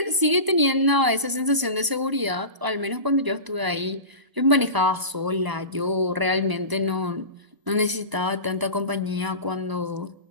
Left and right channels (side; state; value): left; late; 1.0 ms